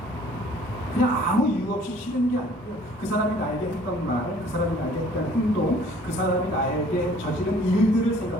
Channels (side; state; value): both; normal; correlation 0.55